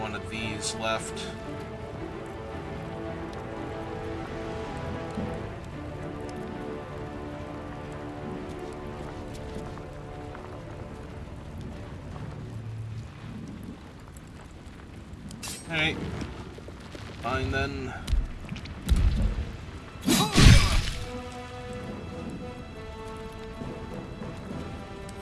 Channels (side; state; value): both; identical; correlation 1.00